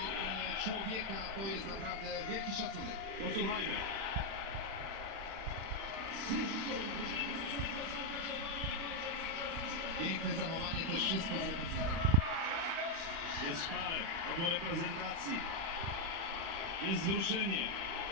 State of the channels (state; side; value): late; left; 36 ms